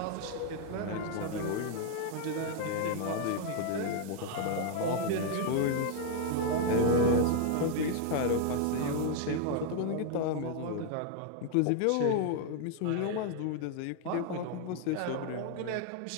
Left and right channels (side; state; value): both; different; correlation 0.00